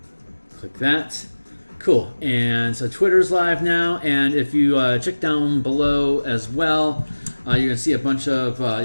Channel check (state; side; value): inverted; both; correlation -1.00